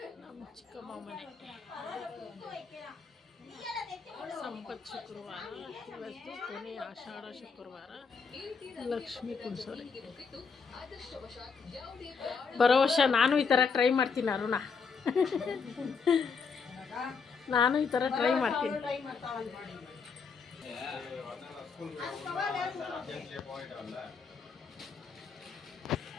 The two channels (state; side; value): quieter; right; 5.5 dB